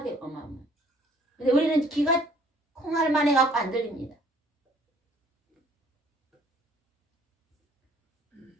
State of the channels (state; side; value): normal; both; correlation 0.59